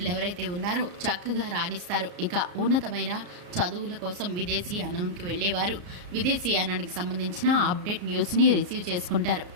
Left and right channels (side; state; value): left; late; 34 ms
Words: ఎవరైతే ఉన్నారో చక్కగా రాణిస్తారు. ఇక ఉన్నతమైన చదువుల కోసం విదేశీయానానికి వెళ్ళేవారు విదేశీయానానికి సంబంధించిన అప్డేట్ న్యూస్ని రిసీవ్ చేసుకుంటారు.